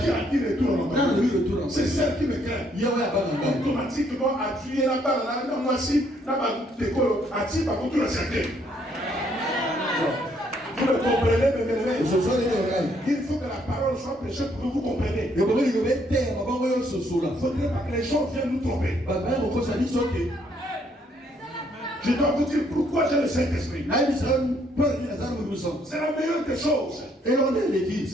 a dit retour à l'envoyeur? C'est celle qui me craint. Automatiquement, à tuer la balle, là, moi si, là-bas, à tuer par contre le cercueil. Vous le comprenez, mes bien-aimés? Il faut que la parole soit prêchée pour que vous compreniez. Il ne faudrait pas que les gens viennent nous tromper. Je dois vous dire pourquoi j'ai le Saint-Esprit. C'est la meilleure des choses.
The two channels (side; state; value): both; normal; correlation 0.69